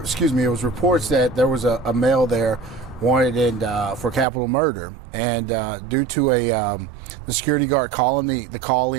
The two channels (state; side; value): drops out; left; at 4.2 s